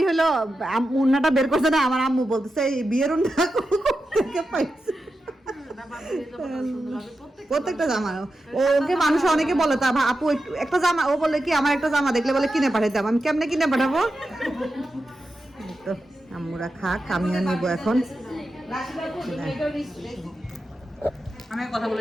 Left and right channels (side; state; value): both; normal; correlation 0.90